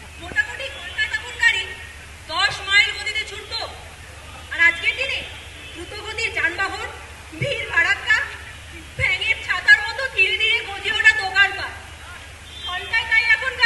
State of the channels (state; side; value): identical; both; correlation 1.00